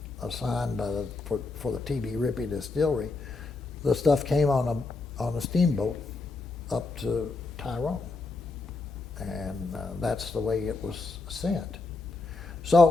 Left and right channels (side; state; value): right; quieter; 3.7 dB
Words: assigned for the T.B. Ripy distillery, the stuff came on a steamboat up to Tyrone, and that's the way it was sent.